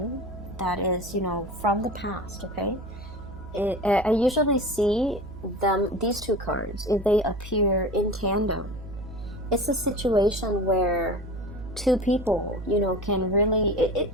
that is, from the past, okay? I usually see these two cards, if they appear in tandem, it's a situation where two people, can really,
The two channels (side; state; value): right; noise; hum, 14 dB below the sound